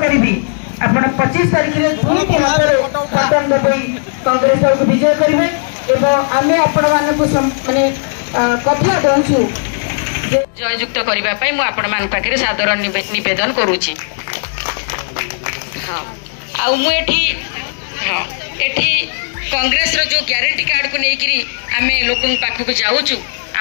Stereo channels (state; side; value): silent; right; digital silence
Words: आप 25 तारीख में दुईटी हाथ में बटन दबाई कांग्रेस दल को विजय करेंगे एवं आम आपण माने कथा दौचु जययुक्त करने आपण मान पाखे सादर निवेदन करुच्ची। हाँ आठी हाँ एठी कांग्रेस रो जो ग्यारंटी कार्ड को लेकिरी आम लोक पाखक जाऊँ